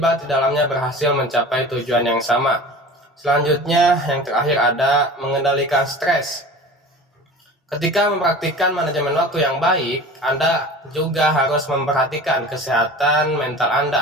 di dalamnya berhasil mencapai tujuan yang sama. Selanjutnya, yang terakhir ada mengendalikan stres. Ketika mempraktikkan manajemen waktu yang baik, Anda juga harus memperhatikan kesehatan mental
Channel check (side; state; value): both; normal; correlation 0.38